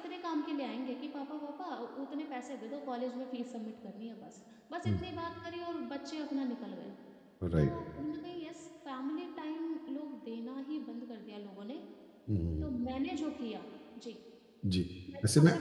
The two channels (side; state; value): both; identical; correlation 1.00